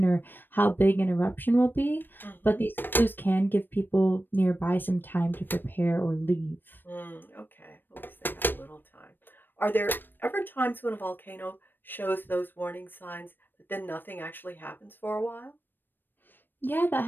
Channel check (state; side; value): late; right; 0.094 ms